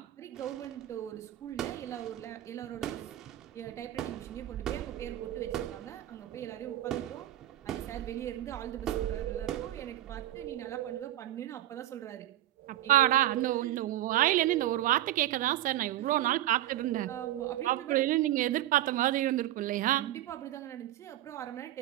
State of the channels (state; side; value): quieter; left; 14.0 dB